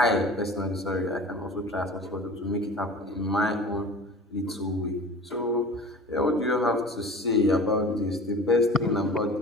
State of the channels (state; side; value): normal; both; correlation 0.40